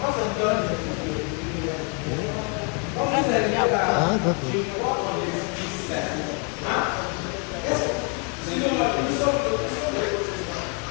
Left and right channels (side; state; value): right; quieter; 36.9 dB